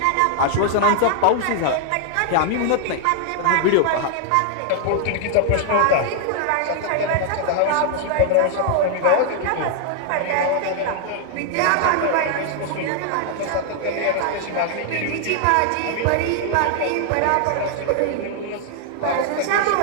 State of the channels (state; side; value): different; both; correlation 0.00